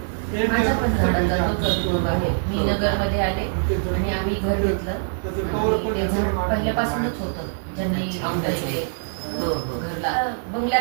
माझ्या पण झाडाला तोच अनुभव आहे. मी नगरमध्ये आले आणि आम्ही घर घेतलं आणि ते झाड पहिल्यापासूनच होतं. ज्यांनी पहिले हो, हो. घरला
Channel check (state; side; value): silent; left; 60 dB below the other